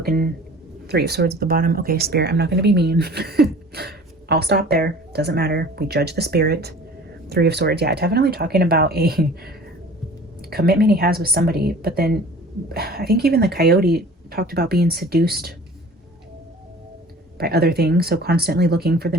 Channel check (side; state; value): both; normal; correlation 0.45